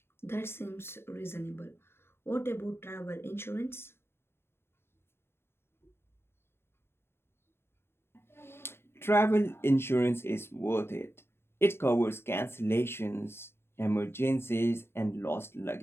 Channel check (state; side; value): late; right; 0.12 ms